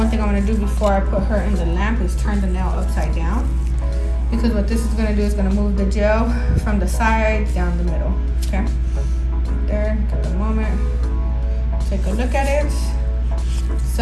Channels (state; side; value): identical; both; correlation 1.00